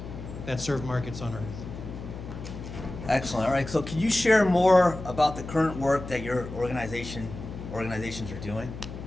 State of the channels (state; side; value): noise; left; hum, 10 dB below the sound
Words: that serve markets on Earth. Excellent. All right. So, can you share more about the current work that your organizations are doing?